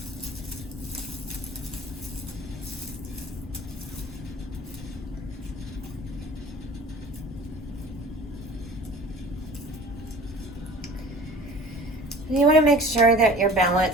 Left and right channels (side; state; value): both; normal; correlation 0.44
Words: You want to make sure that you're